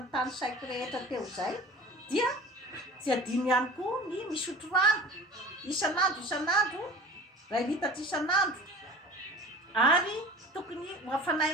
saiko rehetra teo zay dia tsy adino ihany koa ny misotro rano isan'andro 2 litatra isan'andro ary tokony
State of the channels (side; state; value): both; normal; correlation 0.40